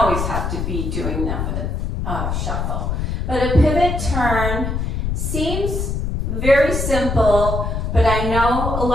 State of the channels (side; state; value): left; noise; rumble, 2 dB below the sound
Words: have to be doing them with a shuffle. But a pivot turn seems very simple, but I know a